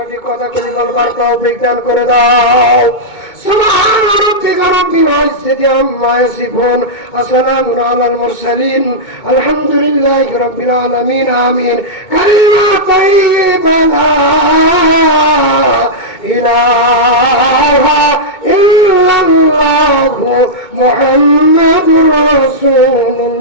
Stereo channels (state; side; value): late; right; 2.2 ms